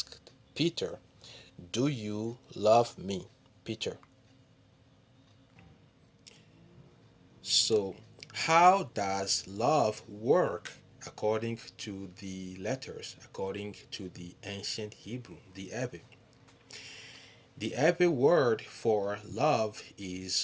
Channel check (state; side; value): identical; both; correlation 1.00